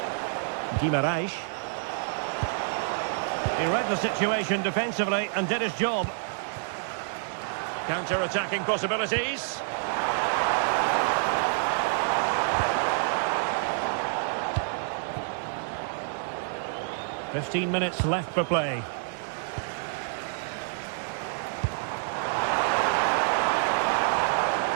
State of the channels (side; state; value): left; silent; digital silence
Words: Guimaraes. He read the situation defensively and did his job. Counter-attacking possibilities. 15 minutes left for play.